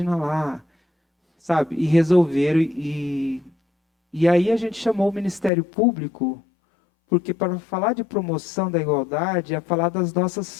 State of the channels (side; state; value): right; drops out; at 5.5 s